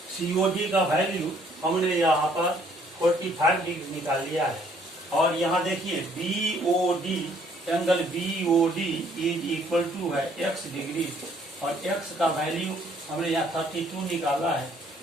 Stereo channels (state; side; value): normal; both; correlation 0.63